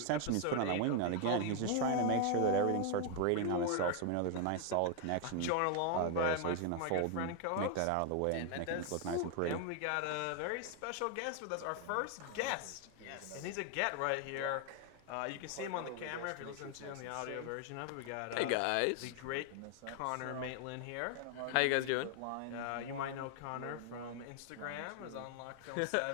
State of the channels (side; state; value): both; different; correlation 0.00